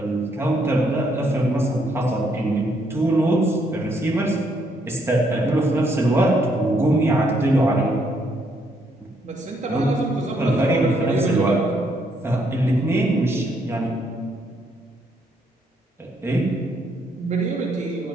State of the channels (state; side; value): normal; both; correlation 0.72